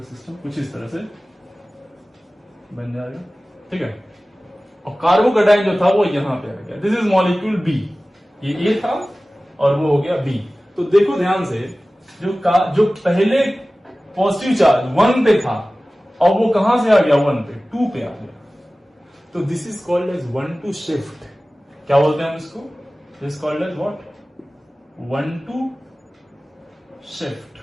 सिस्टम कुछ इस तरह से बन जाएगा, ठीक है। और कार्बोकैटायन जो था वो यहां पे आ गया। This is molecule B. ये ए था और वो हो गया बी। तो देखो ध्यान से, जो पहले पॉजिटिव चार्ज 1 पे था और वो कहां से आ गया 1 पे 2 पे आ गया। तो this is called as 1-2 shift. क्या बोलते हैं हम इसको? This called as what? 1-2 shift,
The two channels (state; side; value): normal; both; correlation 0.97